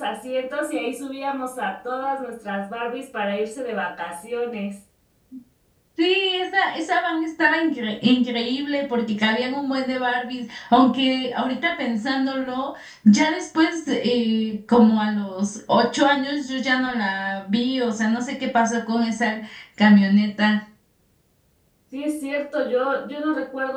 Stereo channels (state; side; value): identical; both; correlation 1.00